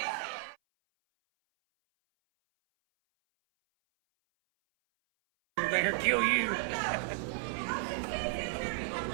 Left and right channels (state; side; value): silent; left; 56 dB below the other